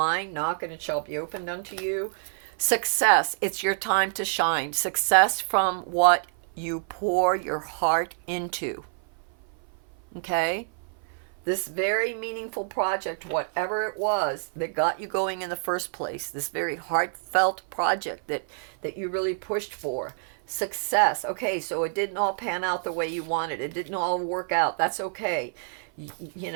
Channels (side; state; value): left; silent; 56 dB below the other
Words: Knock and it shall be opened unto you. Success, it's your time to shine. Success from what you pour your heart into. Okay? This very meaningful project, whatever it was that got you going in the first place, this very heartfelt project that you really pushed for. Success. Okay, so it didn't all pan out the way you wanted. It didn't all work out. That's okay.